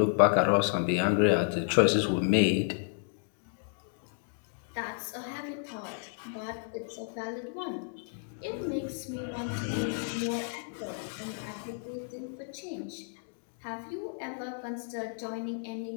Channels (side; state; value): right; silent; digital silence